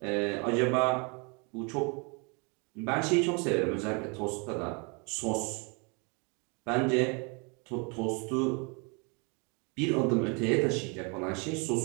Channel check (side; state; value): left; quieter; 32.9 dB